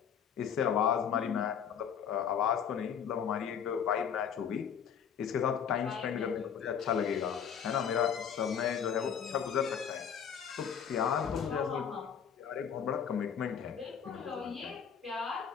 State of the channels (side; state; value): right; quieter; 7.9 dB